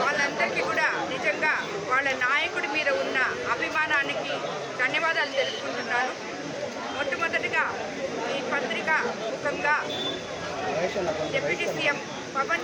వాళ్ళందరికీ కూడా నిజంగా వాళ్ళ నాయకుడి మీద ఉన్న అభిమానానికి ధన్యవాదాలు తెలుపుకుంటున్నాను. మొట్టమొదటిగా ఈ పత్రిక ముఖంగా డిప్యూటీ సీఎం పవన్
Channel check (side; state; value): both; identical; correlation 1.00